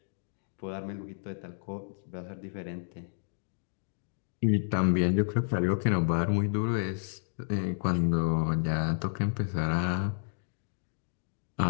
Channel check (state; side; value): silent; right; digital silence